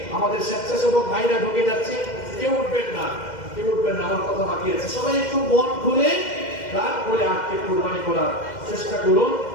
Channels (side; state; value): right; late; 2.1 ms